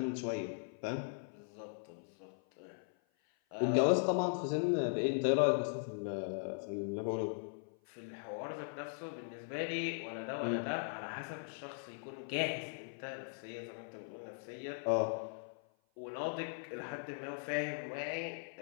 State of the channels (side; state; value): right; silent; 52 dB below the other